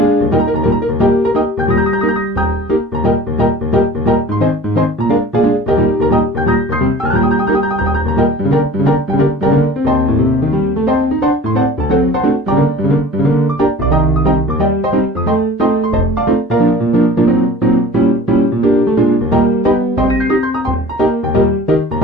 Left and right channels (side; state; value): both; normal; correlation 0.44